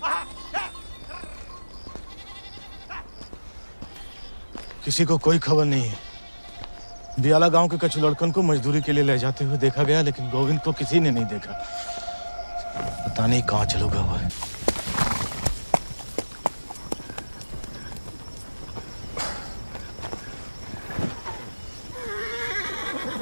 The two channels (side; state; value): both; inverted; correlation -1.00